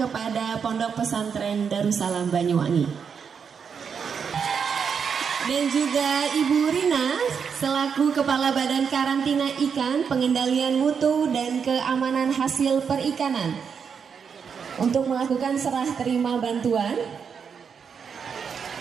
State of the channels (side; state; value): left; quieter; 6.6 dB